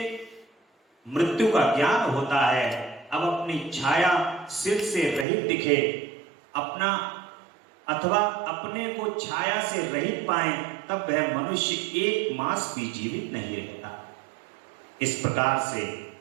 मृत्यु का ज्ञान होता है। अब अपनी छाया सिर से रहित दिखे, अपना अथवा अपने को छाया से रहित पाए तब वह मनुष्य 1 मास भी जीवित नहीं रहता। इस प्रकार से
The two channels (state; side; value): drops out; left; at 5.2 s